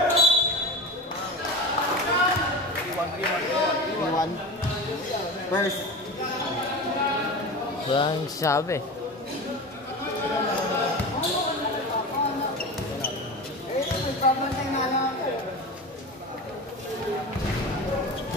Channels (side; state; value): both; normal; correlation 0.29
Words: Iwan. First. Walang sabi.